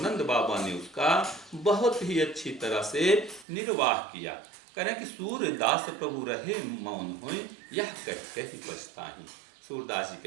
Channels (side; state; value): left; drops out; at 3.5 s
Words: बाबा ने उसका बहुत ही अच्छी तरह से निर्वाह किया। करें कि सूरदास प्रभु रहे मौन होए, यह कह कह पछताहि। सूरदास जी